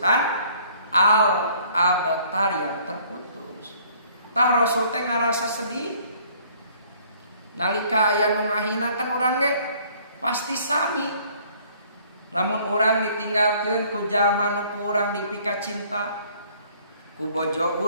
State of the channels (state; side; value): inverted; both; correlation -0.58